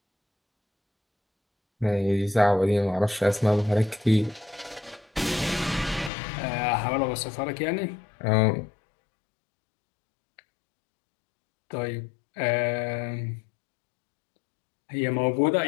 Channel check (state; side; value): drops out; right; at 6.1 s